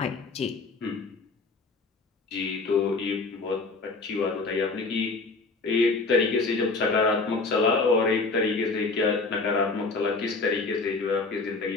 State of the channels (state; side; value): quieter; right; 3.9 dB